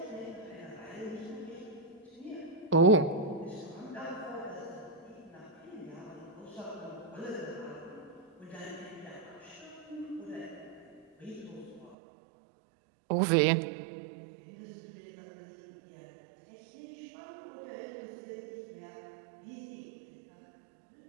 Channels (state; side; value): drops out; left; at 12.0 s